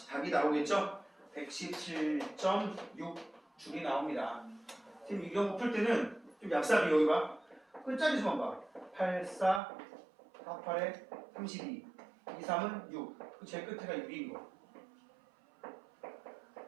답이 나오겠죠? 117.6 줄이 나옵니다. 지금 이 경우 풀 때는 좀 얍삽이 여기 봐. 끝자리 수만 봐. 8, 4, 4, 8에 32. 2, 3은 6. 그 제일 끝에가 6인 거.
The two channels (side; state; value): left; drops out; at 9.6 s